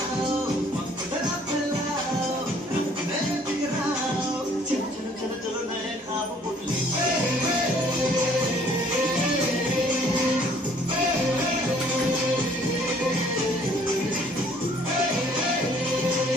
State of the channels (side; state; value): both; normal; correlation 0.59